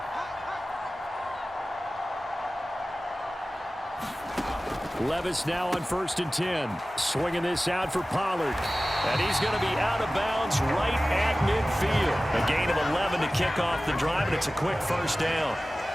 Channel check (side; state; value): both; normal; correlation 0.97